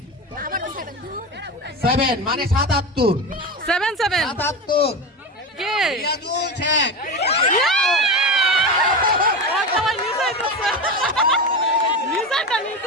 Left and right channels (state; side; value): normal; both; correlation 0.22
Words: মানে 77। 77 কে? রিয়াজুল শেখ।